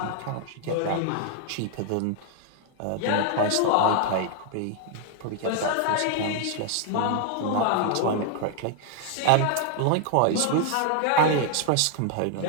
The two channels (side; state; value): both; different; correlation 0.00